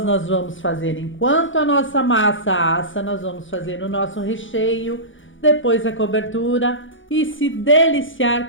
nós vamos fazer, enquanto a nossa massa assa, nós vamos fazer o nosso recheio, depois a cobertura e se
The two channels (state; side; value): late; right; 0.56 ms